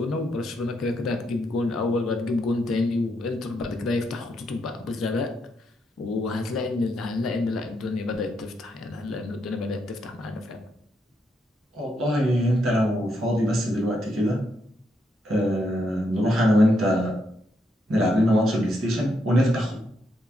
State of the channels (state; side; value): normal; both; correlation 0.79